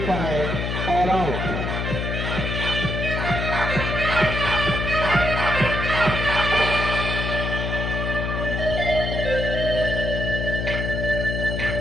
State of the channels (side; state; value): left; noise; hum, 2 dB below the sound